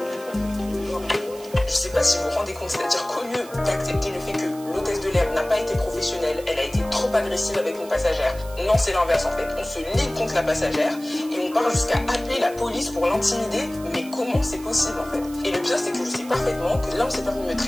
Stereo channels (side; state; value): right; noise; hiss, 19 dB below the sound